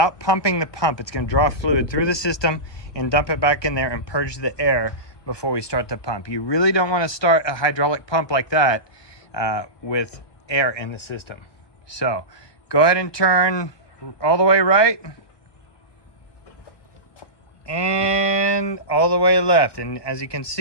pumping the pump. It's gonna draw fluid through the system and dump it back in there and purge the air before we start the pump. You really don't want to start a hydraulic pump like that with air in the system. So go ahead and turn all the way right and all the way left, and as you can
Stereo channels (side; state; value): right; late; 1.2 ms